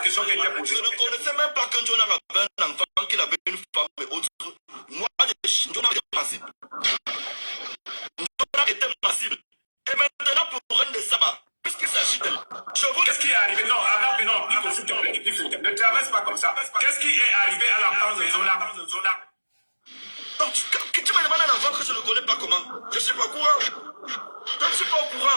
qui était posée. Je ne connaissais même pas qu'un Jonan avait un enfant, qu'il avait une femme et autres. Moi, Jonan était massive. Jonan était massive. Et maintenant, pour un de sabbat, puisqu'il s'agit de... Qu'est-ce qui est arrivé? Non, avant, non, Pifo, s'il te plaît, Pifo, ne traverse pas comme ça. Qu'est-ce qui est arrivé à l'enfant de Jonan? Donc, tu me demandes un enfant que je ne connais pas comment? Je ne suis pas au courant. Je ne suis pas au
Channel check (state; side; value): inverted; both; correlation -1.00